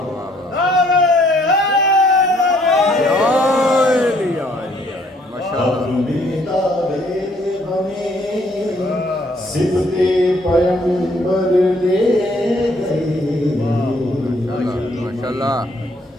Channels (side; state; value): both; normal; correlation 0.65